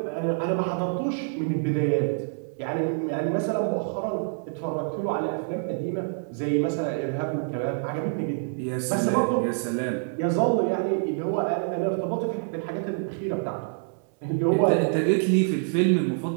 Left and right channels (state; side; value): silent; left; 59 dB below the other